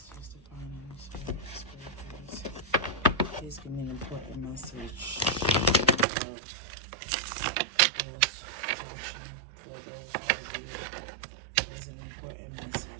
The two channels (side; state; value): left; drops out; at 6.1 s